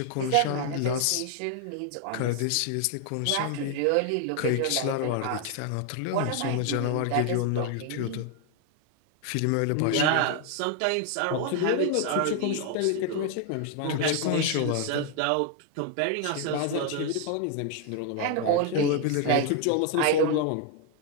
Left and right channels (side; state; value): both; different; correlation 0.00